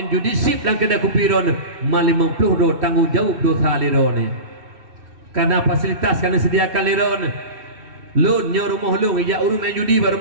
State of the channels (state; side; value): late; left; 3.1 ms